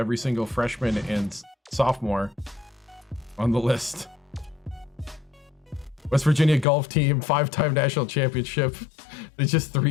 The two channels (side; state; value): right; drops out; at 6.7 s